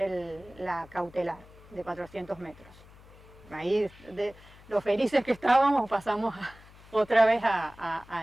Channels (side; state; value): left; noise; hum, 22 dB below the sound